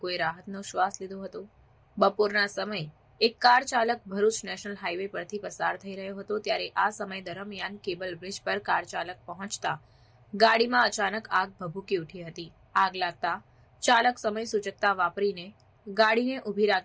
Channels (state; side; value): identical; both; correlation 1.00